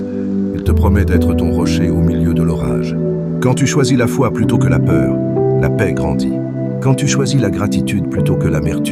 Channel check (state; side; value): identical; both; correlation 1.00